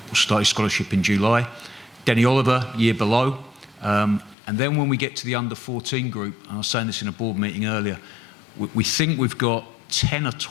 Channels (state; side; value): drops out; right; at 4.4 s